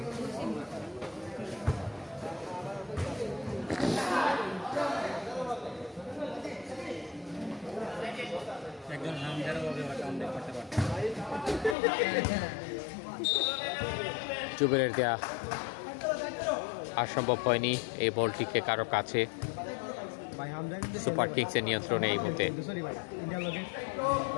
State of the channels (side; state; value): right; drops out; at 11.8 s